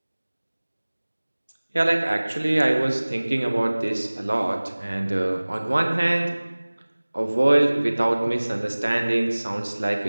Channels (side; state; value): both; inverted; correlation -1.00